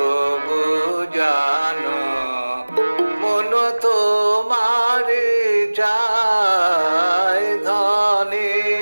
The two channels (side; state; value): both; inverted; correlation -1.00